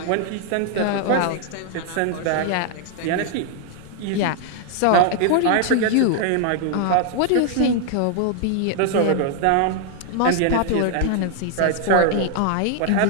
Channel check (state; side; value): different; both; correlation 0.00